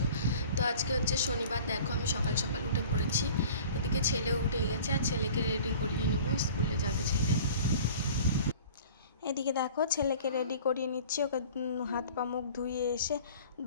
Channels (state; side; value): inverted; both; correlation -0.45